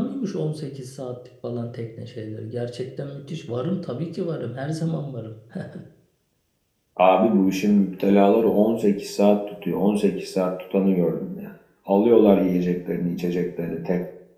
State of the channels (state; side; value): identical; both; correlation 1.00